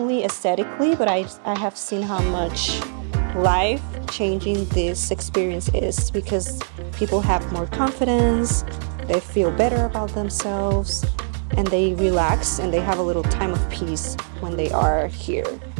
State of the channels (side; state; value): left; silent; 64 dB below the other